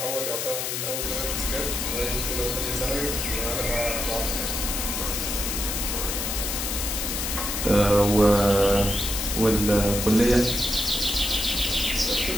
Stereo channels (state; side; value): noise; left; hiss, 2 dB below the sound